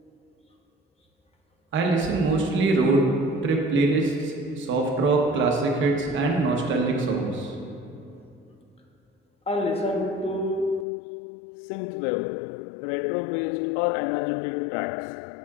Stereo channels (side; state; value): right; drops out; at 10.9 s